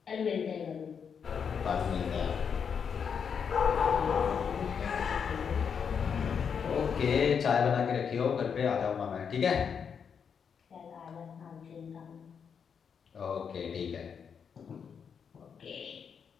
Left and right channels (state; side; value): quieter; right; 6.8 dB